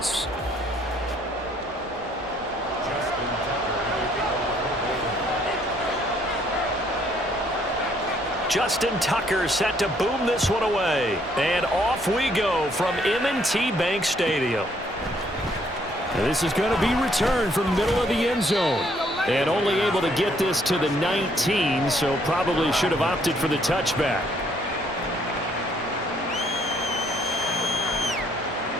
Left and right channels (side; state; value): both; normal; correlation 0.66